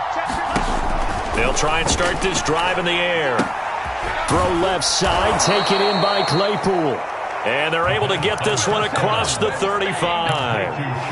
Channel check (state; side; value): identical; both; correlation 1.00